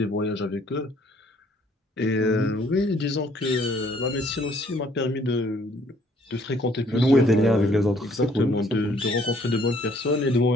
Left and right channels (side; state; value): both; normal; correlation 0.62